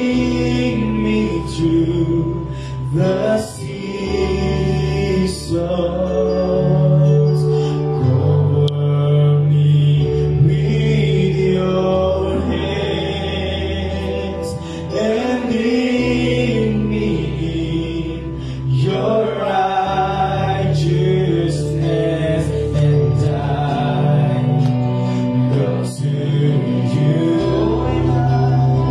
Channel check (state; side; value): identical; both; correlation 1.00